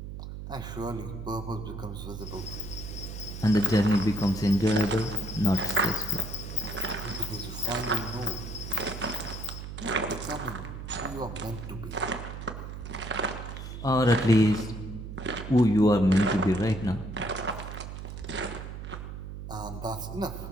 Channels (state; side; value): noise; right; hum, 9 dB below the sound